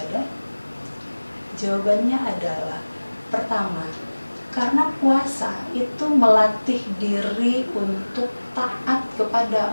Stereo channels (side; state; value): both; inverted; correlation -1.00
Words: Jawabannya adalah, pertama, karena puasa itu melatih diri untuk taat kepada